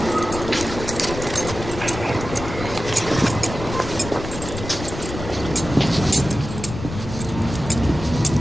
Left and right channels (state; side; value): noise; left; rumble, 8 dB below the sound